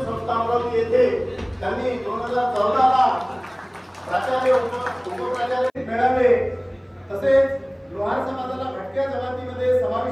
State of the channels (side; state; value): both; identical; correlation 1.00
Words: संस्था अमरावती येथे त्यांनी 2014 ला प्राचार्य उपप्राचार्य मिळाले. तसेच लोहार समाजाला भटक्या जमातीमध्ये